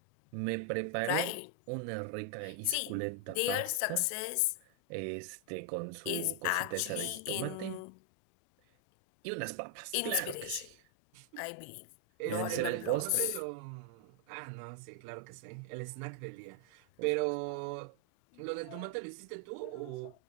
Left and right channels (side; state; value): both; different; correlation 0.00